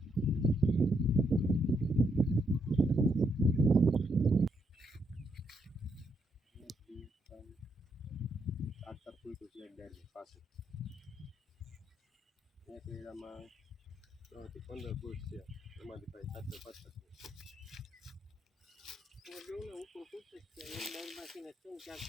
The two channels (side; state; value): both; normal; correlation 0.77